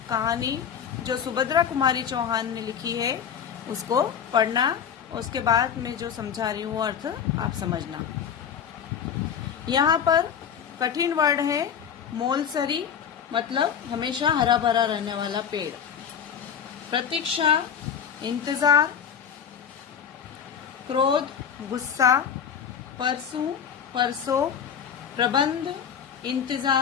कहानी जो सुभद्रा कुमारी चौहान ने लिखी है उसको पढ़ना, उसके बाद मैं जो समझा रही हूँ अर्थ आप समझना। यहाँ पर कठिन वर्ड है मोलसरी, मतलब हमेशा हरा भरा रहने वाला पेड़। प्रतीक्षा इंतजार, क्रोध गुस्सा, परसों परसों, प्रबंध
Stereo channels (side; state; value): right; quieter; 7.9 dB